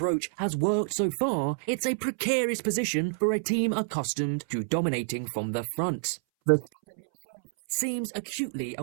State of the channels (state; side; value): silent; left; 59 dB below the other